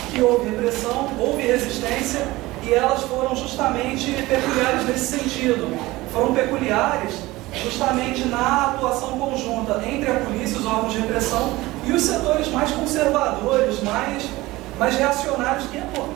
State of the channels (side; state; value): left; quieter; 19.4 dB